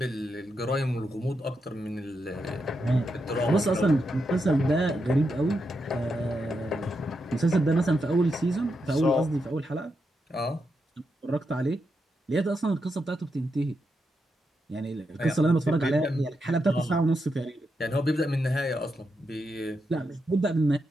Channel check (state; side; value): normal; both; correlation 0.84